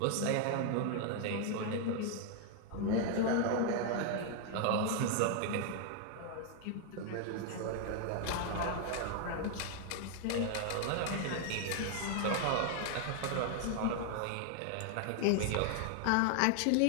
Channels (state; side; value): different; both; correlation 0.00